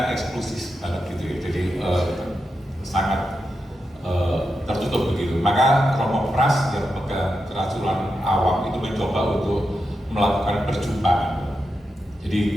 eksklusif banget gitu ya, jadi sangat tertutup begitu. Maka Romo Pras yang pegang kerasulan awam itu mencoba untuk melakukan perjumpaan.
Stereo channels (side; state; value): both; normal; correlation 0.87